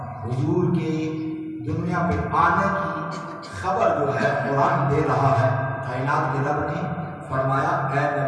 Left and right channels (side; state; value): both; identical; correlation 1.00